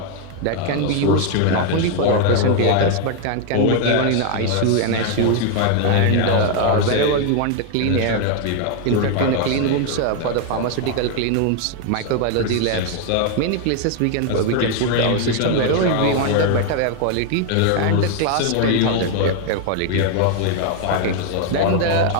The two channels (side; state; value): both; different; correlation 0.01